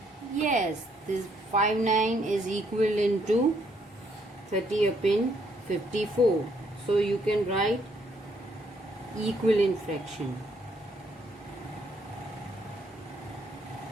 Yes, this 5 9 is equivalent to 30 upon 54. So you can write equivalent fraction.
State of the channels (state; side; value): normal; both; correlation 0.70